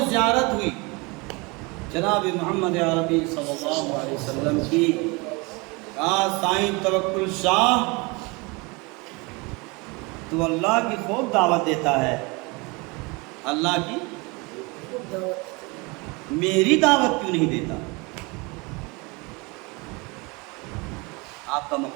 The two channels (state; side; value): quieter; left; 27.2 dB